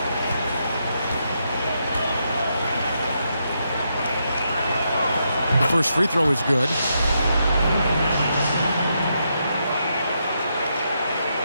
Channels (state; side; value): inverted; both; correlation -0.81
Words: The first free throw is good.